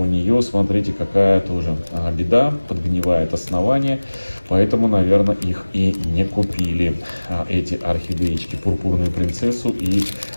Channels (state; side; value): inverted; both; correlation -1.00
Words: нее, смотрите, какая тоже беда. Подгнивает основание. Поэтому, наверное, их и не купили, эти орхидеечки, пурпурную принцессу и